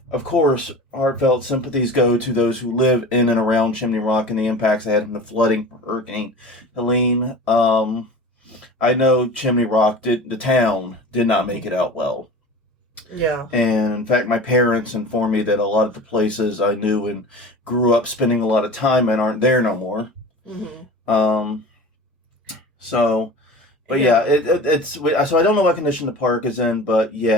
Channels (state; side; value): normal; both; correlation 0.36